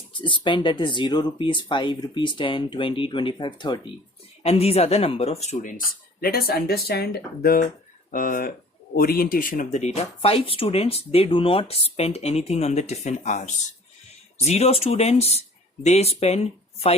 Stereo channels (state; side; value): normal; both; correlation 0.49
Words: that is 0 rupees, 5 rupees, 10, 20, 25, 30. And these are the number of students. Let us understand the orientation of the data. 5 students, they do not spend anything on the tiffin hours. 0 students, they spend